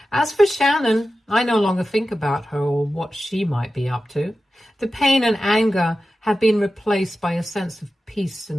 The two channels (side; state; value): both; normal; correlation 0.93